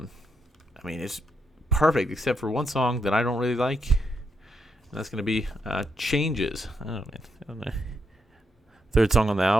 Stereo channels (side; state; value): both; normal; correlation 0.80